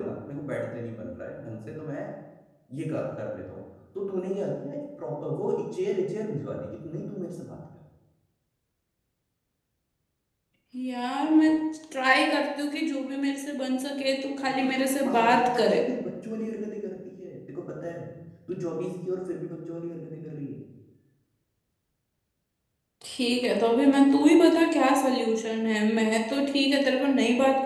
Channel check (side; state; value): both; identical; correlation 1.00